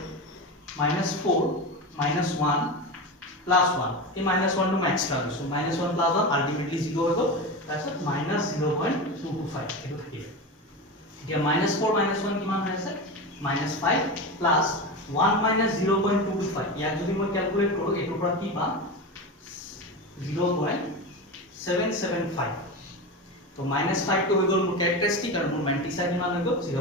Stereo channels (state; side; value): normal; both; correlation 0.23